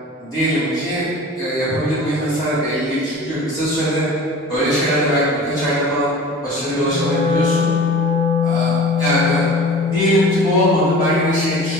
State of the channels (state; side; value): normal; both; correlation 0.40